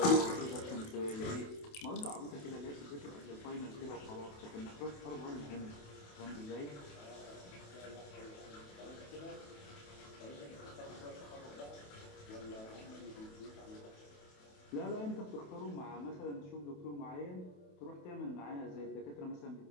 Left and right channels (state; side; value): late; right; 28 ms